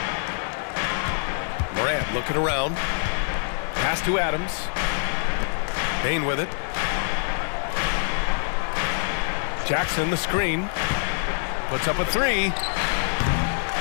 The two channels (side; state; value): right; silent; digital silence